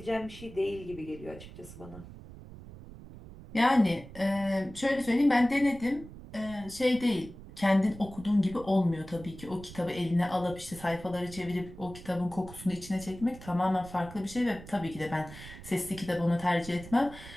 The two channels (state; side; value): noise; right; rumble, 15 dB below the sound